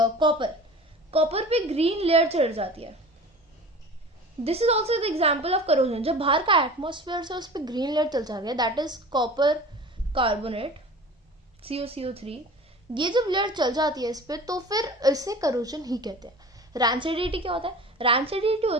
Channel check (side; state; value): both; normal; correlation 0.39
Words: पे ग्रीन लेयर चढ़ जाती है, this is also the example of corrosion. जब बाहर का एटमॉस्फेयर से उस पर ग्रीन लेयर चल जाती है, that is copper carbonate CuCO3, ये जब लेयर चल जाती है इस पे, तो फिर इसे करोजन ही कहते हैं। रैंसिडिटी क्या होता है? रैंसिडिटी